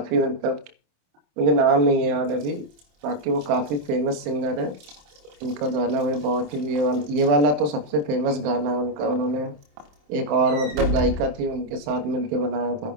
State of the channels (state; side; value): late; left; 27 ms